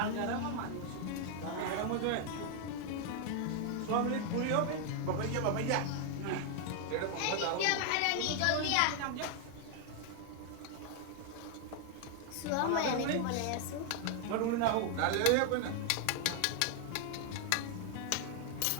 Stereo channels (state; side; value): different; both; correlation 0.00